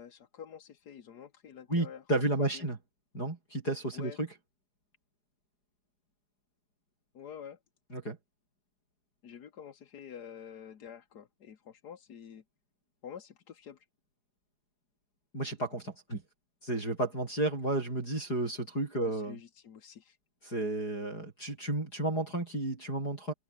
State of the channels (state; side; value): late; right; 4.8 ms